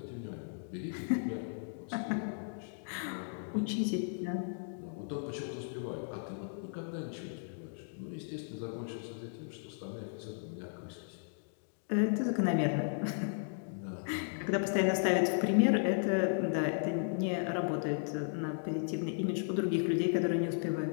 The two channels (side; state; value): right; silent; digital silence